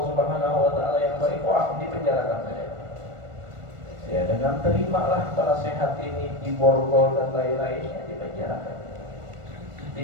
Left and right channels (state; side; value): late; left; 1.4 ms